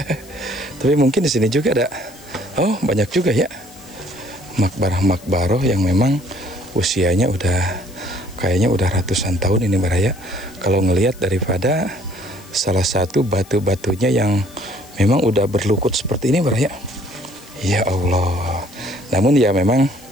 Tapi mungkin di sini juga ada. Oh, banyak juga ya. Makbarah-makbaroh yang memang usianya kayaknya udah ratusan tahun ini baraya. Kalau ngelihat daripada salah satu batu-batunya yang memang udah berlukut seperti ini baraya. Ya Allah. Namun ya memang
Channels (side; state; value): left; noise; hiss, 23 dB below the sound